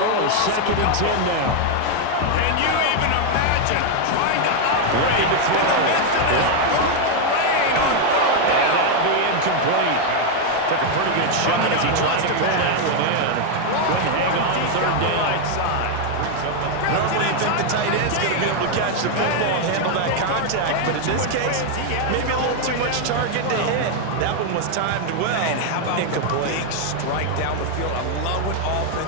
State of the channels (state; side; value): different; both; correlation 0.01